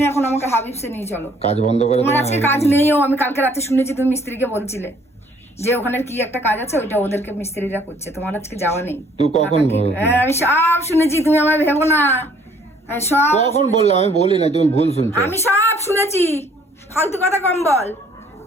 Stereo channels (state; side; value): normal; both; correlation 0.61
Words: এখন আমাকে হাবিবসে নিয়ে চলো। কাজ বন্ধ করে তোমার তোমার আজকে কাজ নেইও, আমি কালকে রাতে শুনেছি তুমি মিস্ত্রিকে বলছিলে যে ওখানে কি একটা কাজ আছে, ওইটা ওদেরকে মিস্ত্রিরা করছে, তোমার আজকে যাওয়া নেই। তুই কখন হ্যাঁ আমি সব শুনেছি, তুমি আমার ভেবো না। আমি সব কখন বললাম? আমি বলি না, তুমি ভুল শুনছো। আমি সব শুনেছি, ফালতু কথা কম বল।